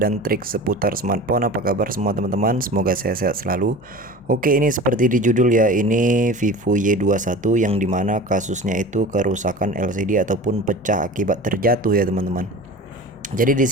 trik seputar smartphone. Apa kabar semua teman-teman? Semoga sehat-sehat selalu. Oke, ini seperti di judul ya, ini Vivo Y21 yang dimana kasusnya itu kerusakan LCD ataupun pecah akibat terjatuh ya teman-teman. Jadi di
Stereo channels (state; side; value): normal; both; correlation 0.37